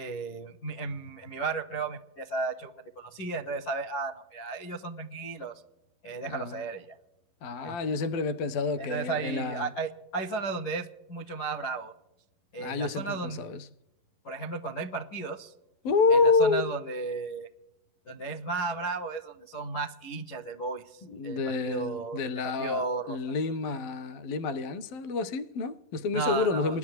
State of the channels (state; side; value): late; right; 11 ms